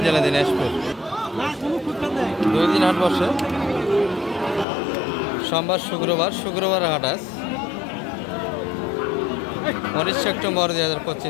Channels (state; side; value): drops out; right; at 4.7 s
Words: জেলা দিনাজপুর। 2 দিন হাট বসে, সোমবার শুক্রবার হাট আজ 19 সেপ্টেম্বর